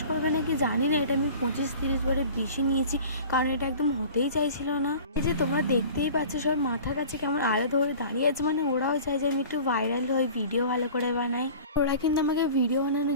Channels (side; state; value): both; inverted; correlation -0.42